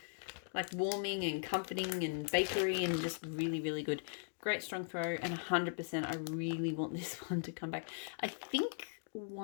Like warming and comforting and bakery and just really, really good. Great strong throw and 100% I really want this one to come back. I think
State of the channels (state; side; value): silent; right; digital silence